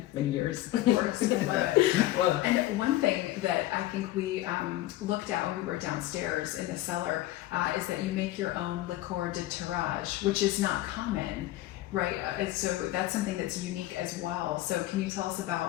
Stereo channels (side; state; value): right; quieter; 15.6 dB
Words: many years. Of course, I love it. Well, And one thing that I think we looked at when we were downstairs in the cellar is that you make your own liqueur de tirage, which is not common, right? So that's something that's unique as well. So can you tell us